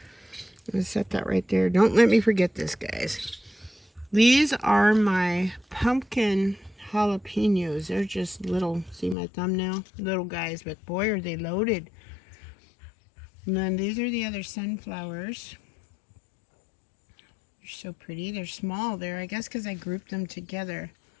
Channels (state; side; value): drops out; right; at 9.2 s